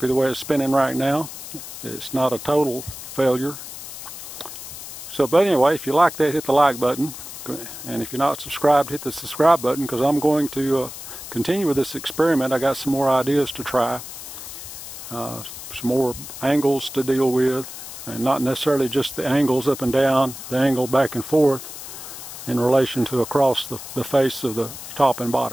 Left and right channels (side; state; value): left; noise; hiss, 11 dB below the sound